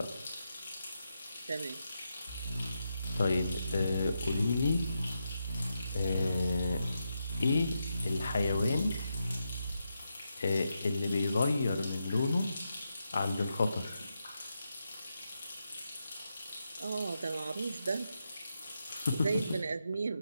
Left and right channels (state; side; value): inverted; both; correlation -0.85